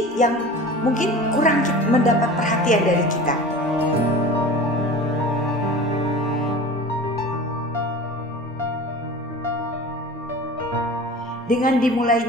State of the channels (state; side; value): normal; both; correlation 0.37